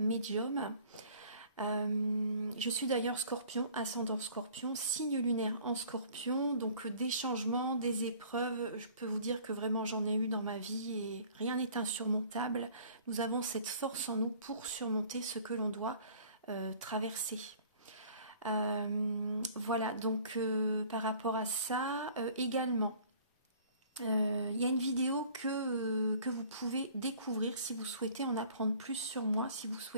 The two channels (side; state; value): both; inverted; correlation -0.51